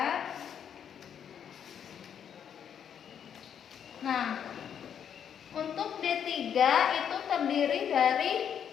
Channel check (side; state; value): right; quieter; 8.4 dB